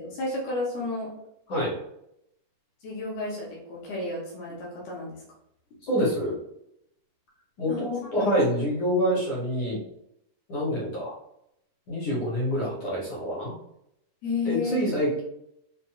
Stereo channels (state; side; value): late; right; 9.8 ms